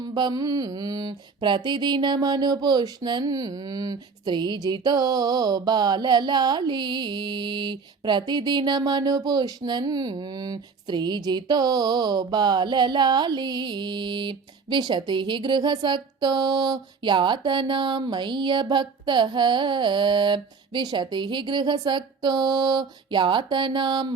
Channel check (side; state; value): left; quieter; 5.1 dB